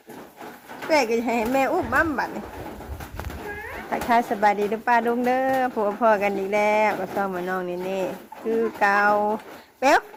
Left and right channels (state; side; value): identical; both; correlation 1.00